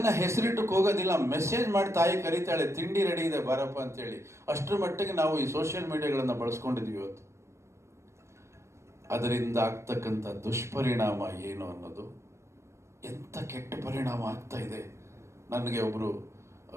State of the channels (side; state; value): left; late; 0.13 ms